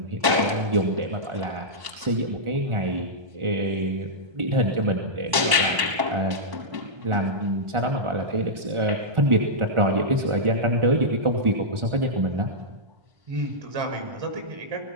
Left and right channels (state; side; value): late; left; 1.1 ms